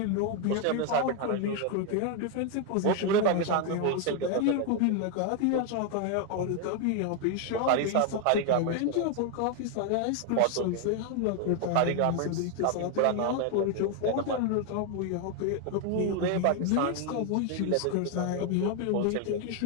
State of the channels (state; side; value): different; both; correlation 0.01